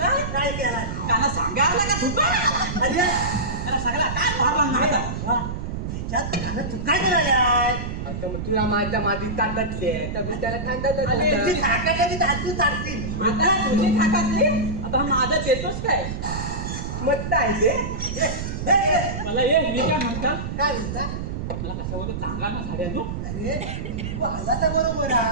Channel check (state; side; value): noise; right; rumble, 5 dB below the sound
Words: काय केला त्यांना सांगायला का तुका त्याला सगळा काय भाव काय करायला तुला माझ्या मातीत ताटातले तर त्याला आता माझा देतोच काय मत आहे मला ये मी काय म्हणता काय म्हणता मला कशावर चांगला ना झाड्यानो अरे तू आला तर बरोबर